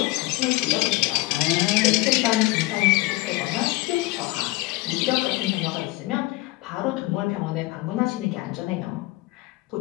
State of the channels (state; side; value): quieter; right; 21.6 dB